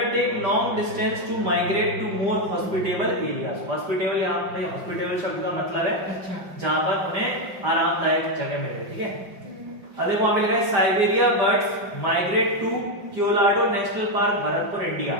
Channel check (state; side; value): late; left; 5.1 ms